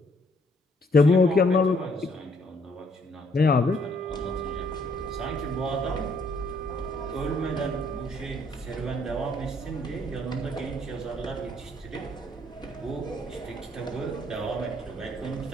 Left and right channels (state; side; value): normal; both; correlation 0.67